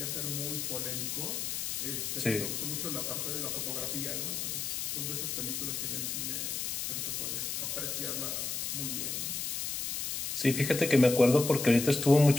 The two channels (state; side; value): noise; left; hiss, 2 dB below the sound